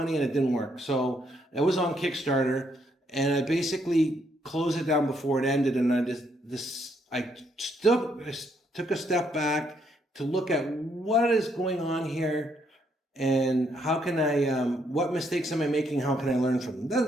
and it didn't work. So it was on Kickstarter, and I basically closed it down before it ended, and I took a step back to look at what is going on here, and how can I, what mistakes am I making? How can I learn from them?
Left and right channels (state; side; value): normal; both; correlation 0.73